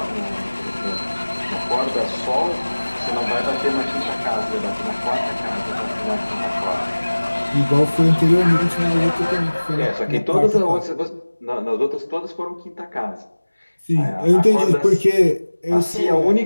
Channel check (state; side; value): inverted; both; correlation -1.00